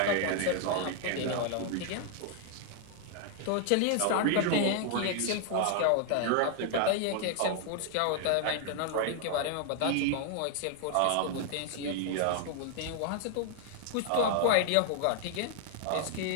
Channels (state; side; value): different; both; correlation 0.00